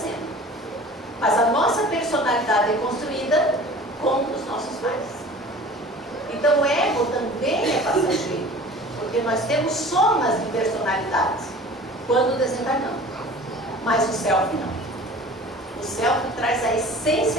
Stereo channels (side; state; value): both; normal; correlation 0.43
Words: Mas a nossa personalidade é construída com os nossos pais. Então o ego também é passageiro, porque nós temos somas de personalidades quando desencarnamos. Mas o self não. O self traz a